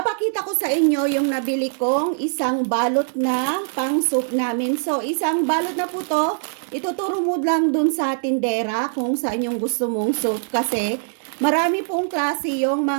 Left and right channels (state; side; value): silent; left; 64 dB below the other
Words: ko sa inyo yung nabili kong isang balot na pang soup namin. So, isang balot na po to. Ituturo mo lang dun sa tindera kung saan yung gusto mong soup. Kasi marami pong klase yung